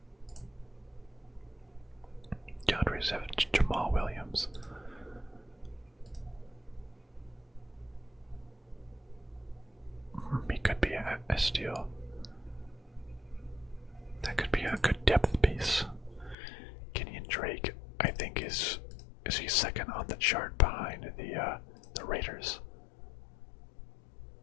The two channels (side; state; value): right; drops out; at 16.4 s